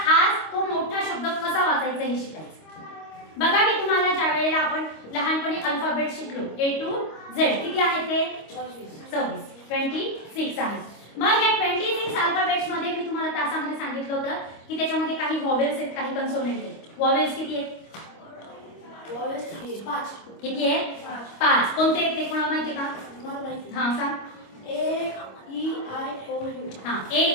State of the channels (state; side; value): late; right; 25 ms